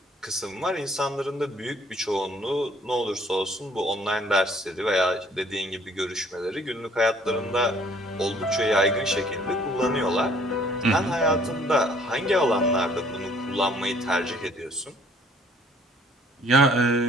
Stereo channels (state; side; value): normal; both; correlation 0.59